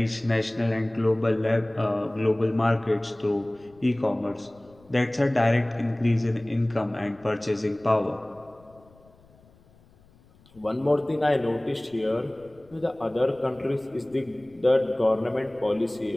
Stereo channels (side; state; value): left; noise; rumble, 28 dB below the sound